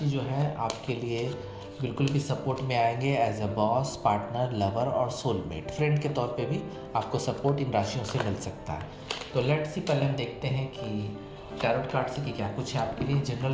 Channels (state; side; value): identical; both; correlation 1.00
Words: जो है आपके लिए बिल्कुल भी सपोर्ट में आएंगे as a boss, partner, lover और सोलमेट, फ्रेंड के तौर पे भी आपको सपोर्ट इन राशियों से मिल सकता है। तो लेट्स सी, पहले हम देखते हैं कि टैरोट कार्ड से कि क्या कुछ है आपके लिए। जनरल